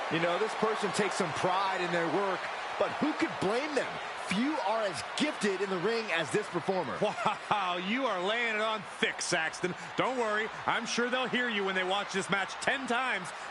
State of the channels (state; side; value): identical; both; correlation 1.00